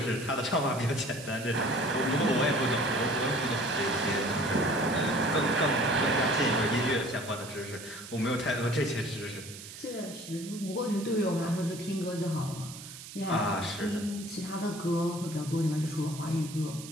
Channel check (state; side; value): noise; right; hiss, 14 dB below the sound